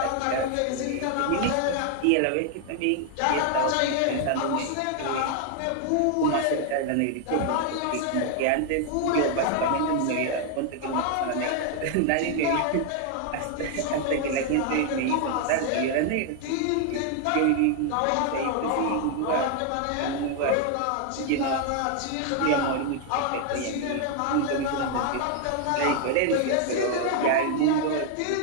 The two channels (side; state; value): both; different; correlation 0.00